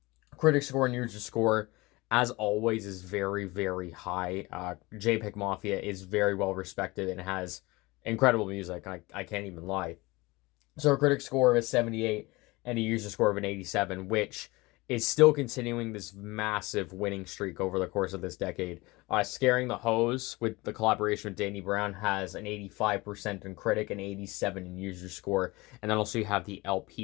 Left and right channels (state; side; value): quieter; right; 22.5 dB